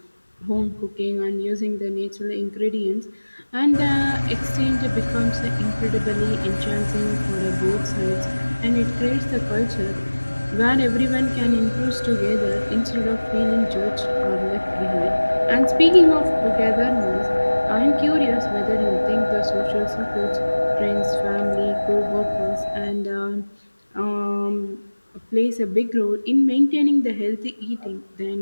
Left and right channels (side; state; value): both; inverted; correlation -1.00